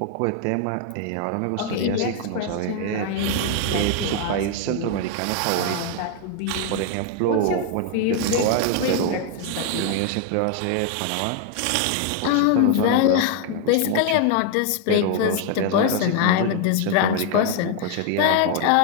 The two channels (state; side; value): different; both; correlation 0.00